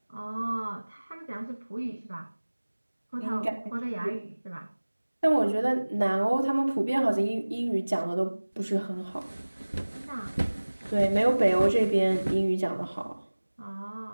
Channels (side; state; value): both; inverted; correlation -1.00